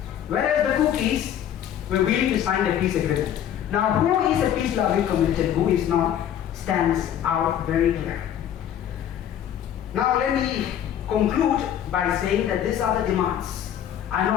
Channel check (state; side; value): quieter; right; 10.2 dB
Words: Whereas the Kukis were willing to sign the peace agreement. Now, who is a peace-loving community and who is not stands out very clear. Now, let me conclude by saying that these are the demands. I know